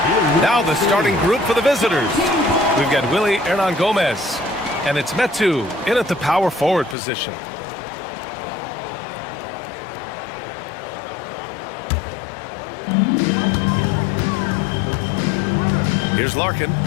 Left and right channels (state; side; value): drops out; right; at 7.0 s